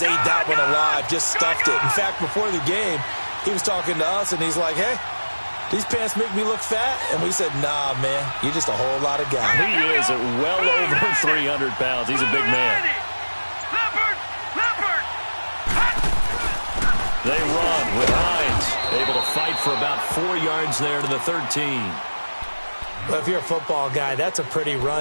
ate that one alive, just stuffed it. In fact, before the game, he was talking to us, and he's like, hey, these pants make me look fat. And we said, nah, man, you're just a whole lot of guy. He is at well over 300 pounds. He's a big man. They run with Hines, able to fight for about 4 yards there to the 13. Well, if you're a football guy, that's a pretty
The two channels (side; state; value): both; inverted; correlation -1.00